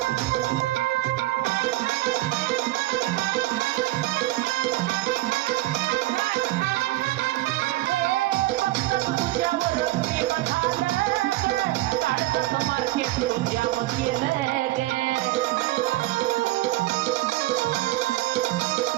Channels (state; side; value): quieter; left; 17.7 dB